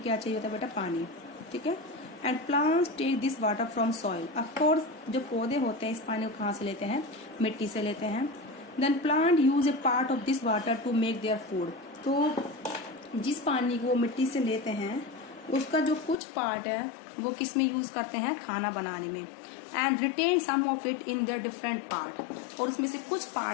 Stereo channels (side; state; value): right; drops out; at 16.2 s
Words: क्या चाहिए होता है बेटा? पानी, ठीक है। And plants take this water from soil. Of course जो पौधे होते हैं इस पानी को कहाँ से लेते हैं? मिट्टी से लेते हैं। Then plant use a part of this water to make their food. तो जिस पानी को वो मिट्टी से लेते हैं उसका जो कुछ पार्ट है वो किस में यूज करते हैं? खाना बनाने में। And retain some of it in their different part. और उसमें से कुछ